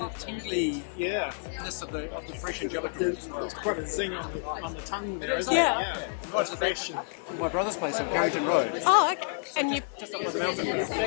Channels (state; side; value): silent; right; 58 dB below the other